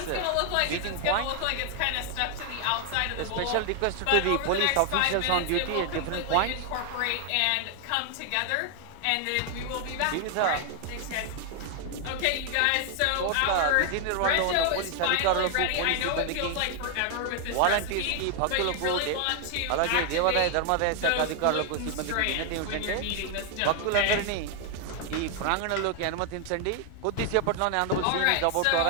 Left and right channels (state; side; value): different; both; correlation 0.00